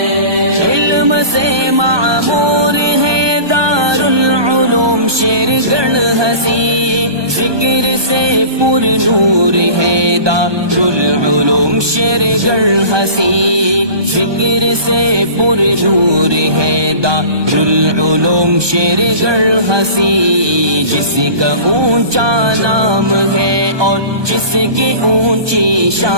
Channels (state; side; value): late; left; 1.2 ms